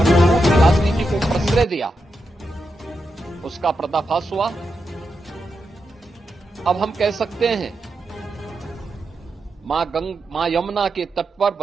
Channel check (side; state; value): both; normal; correlation 0.86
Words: झूठ की राजनीति को प्रश्रय दिया, उसका पर्दाफाश हुआ। अब हम कह सकते हैं मां यमुना के तट पर